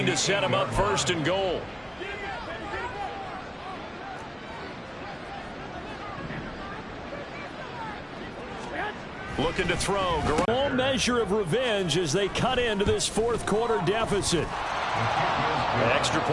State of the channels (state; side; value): identical; both; correlation 1.00